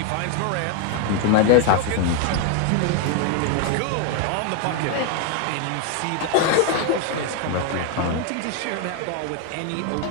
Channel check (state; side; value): different; both; correlation 0.01